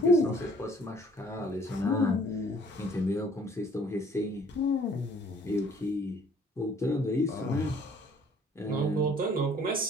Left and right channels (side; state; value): both; normal; correlation 0.57